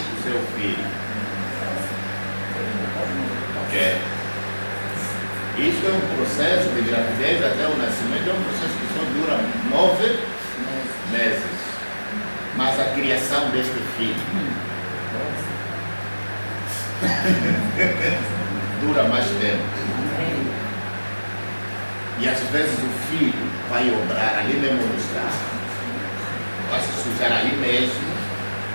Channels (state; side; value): inverted; both; correlation -1.00